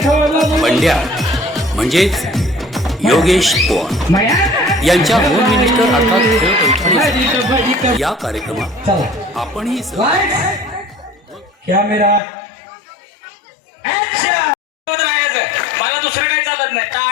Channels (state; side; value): drops out; right; at 12.2 s